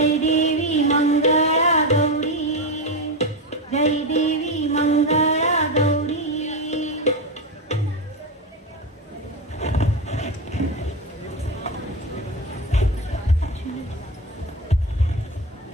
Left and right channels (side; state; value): both; normal; correlation 0.15